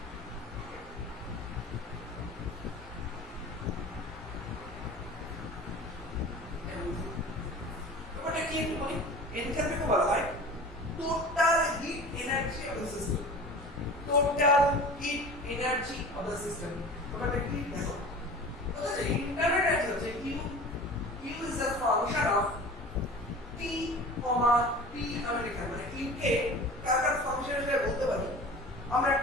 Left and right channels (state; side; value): normal; both; correlation 0.38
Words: ব্যাপারটা কি একটু বলি। এনথালপিকে বলা হয় total heat energy of the system. Total heat energy of the system ব্যাপারটা কি দেখো, বুঝছো? ইন্টারনাল এনার্জি হচ্ছে U is the function of T comma T American, মানে ইউকে কার ফাংশন হিসেবে বলতে পারি আমরা,